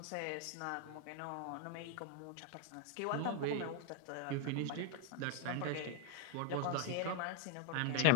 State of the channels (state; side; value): different; both; correlation 0.01